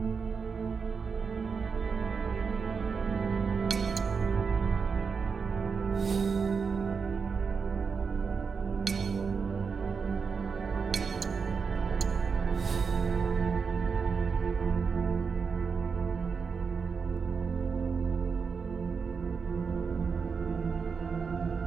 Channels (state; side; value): quieter; left; 5.5 dB